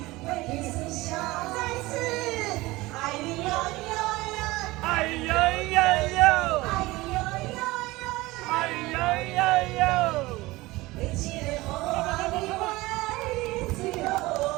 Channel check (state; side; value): quieter; left; 20.2 dB